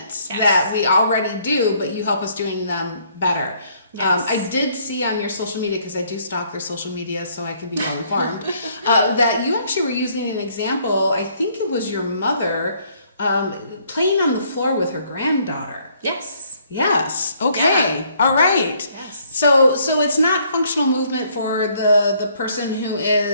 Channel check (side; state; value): both; inverted; correlation -0.65